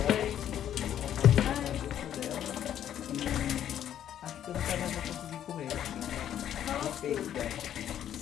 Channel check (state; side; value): quieter; right; 10.5 dB